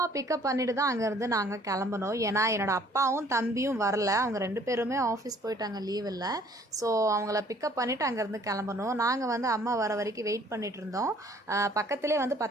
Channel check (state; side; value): normal; both; correlation 0.58